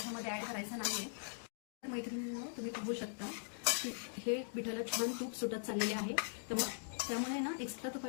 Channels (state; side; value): silent; right; digital silence